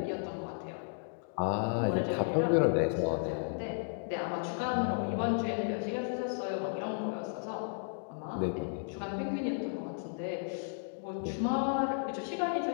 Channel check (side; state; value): right; silent; digital silence